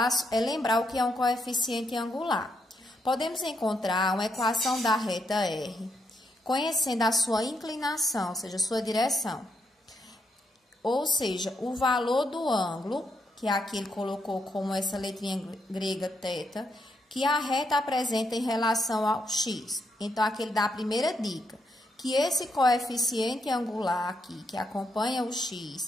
é lembrar o que é um coeficiente angular. Podemos encontrar uma equação da reta R, conhecendo a sua inclinação, ou seja, a sua direção. Ou seja, o valor do ângulo, que aqui ele colocou como essa letrinha grega θ, que a reta apresenta em relação ao x. Então, aqui ele dá a primeira dica, que esse coeficiente angular aqui, que acompanha o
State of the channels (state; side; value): normal; both; correlation 0.78